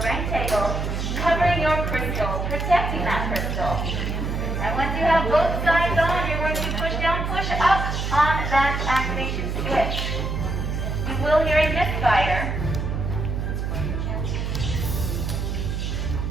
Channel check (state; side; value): noise; right; hum, 2 dB below the sound